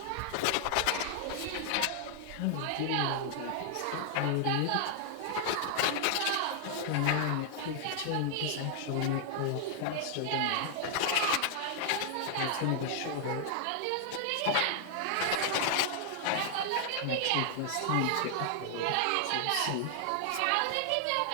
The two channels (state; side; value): different; both; correlation -0.01